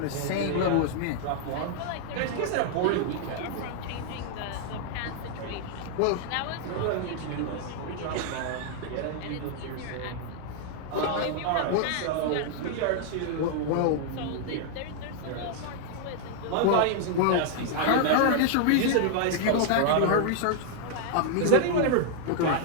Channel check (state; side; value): different; both; correlation 0.00